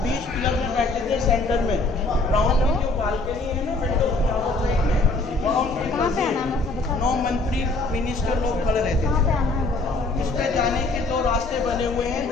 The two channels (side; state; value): right; quieter; 3.2 dB